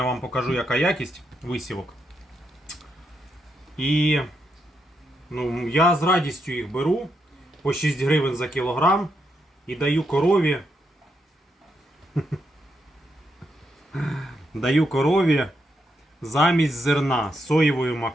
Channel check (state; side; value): normal; both; correlation 0.81